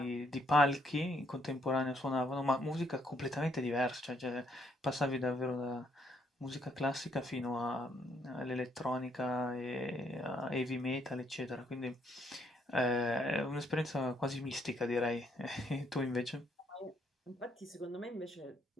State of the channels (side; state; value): both; normal; correlation 0.71